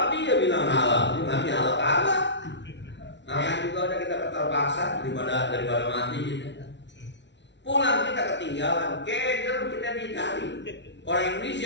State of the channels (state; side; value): late; right; 0.51 ms